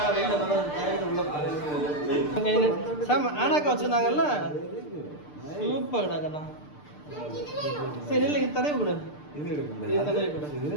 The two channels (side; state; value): right; late; 6.7 ms